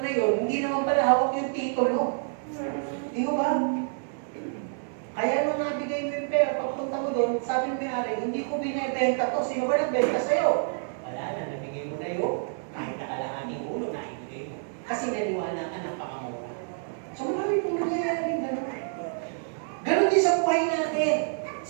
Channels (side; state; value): left; silent; digital silence